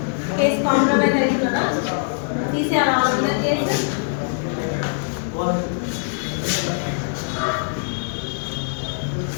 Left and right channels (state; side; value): silent; right; digital silence